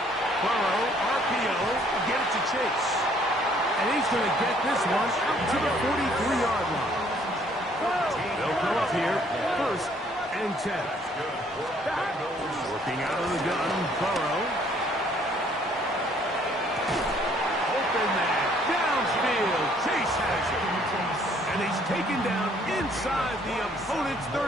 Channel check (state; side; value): normal; both; correlation 0.62